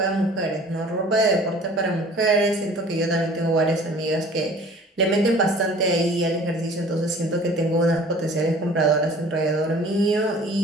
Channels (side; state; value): both; normal; correlation 0.48